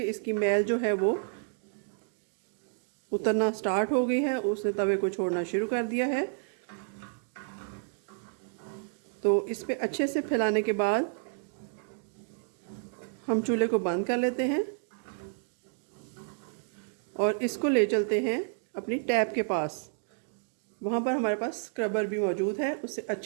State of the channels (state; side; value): silent; left; digital silence